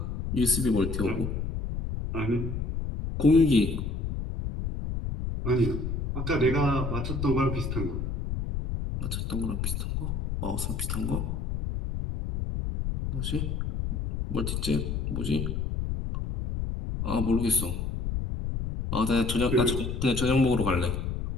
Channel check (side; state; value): left; noise; rumble, 3 dB below the sound